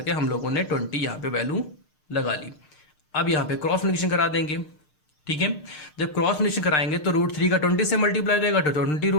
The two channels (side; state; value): right; late; 6.6 ms